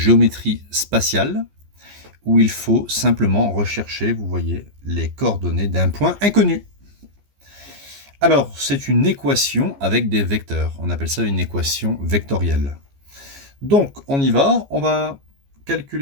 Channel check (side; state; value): left; late; 14 ms